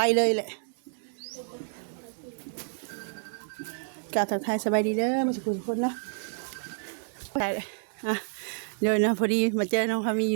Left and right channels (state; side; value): silent; left; digital silence